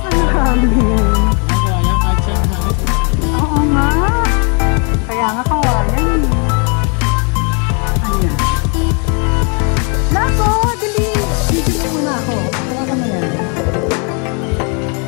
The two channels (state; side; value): quieter; right; 36.5 dB